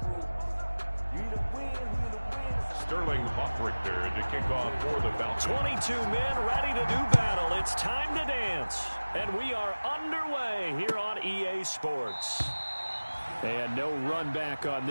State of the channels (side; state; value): both; inverted; correlation -1.00